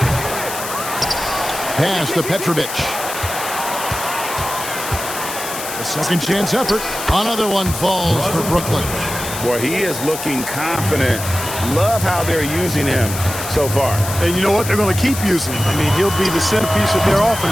Pass to Petrovic. The second chance effort. Another one falls for Brooklyn. Boy, he is looking confident. Love how they're using him so far. And you know what? They're going to keep using him. I mean, he'll be the centerpiece of their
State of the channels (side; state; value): left; noise; hiss, 8 dB below the sound